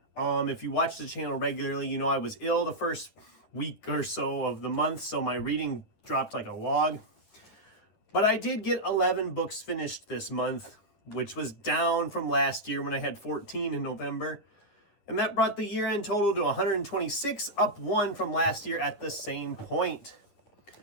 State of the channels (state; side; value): late; right; 9.8 ms